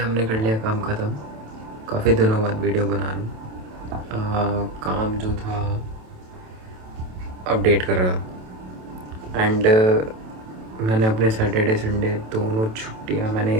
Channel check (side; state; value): left; late; 27 ms